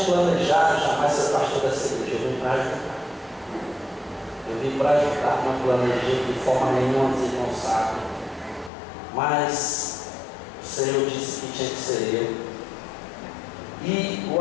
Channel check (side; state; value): right; drops out; at 8.7 s